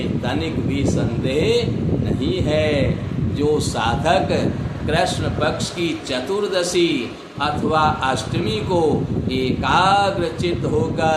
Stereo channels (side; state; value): both; identical; correlation 1.00